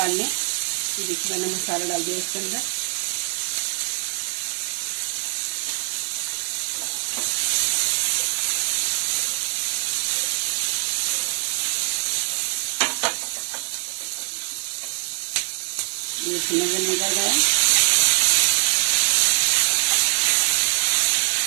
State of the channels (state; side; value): silent; left; digital silence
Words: लें। देखिए मैंने मसाला डाल दिया इसके अंदर। इसमें निकल गया।